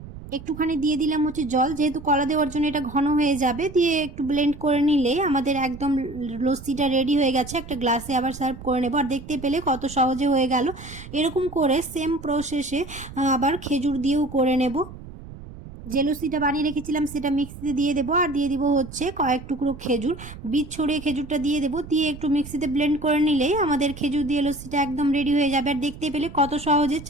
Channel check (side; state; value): right; noise; rumble, 14 dB below the sound